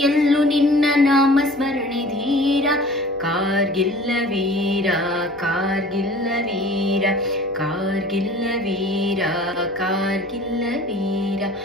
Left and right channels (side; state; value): left; noise; hum, 26 dB below the sound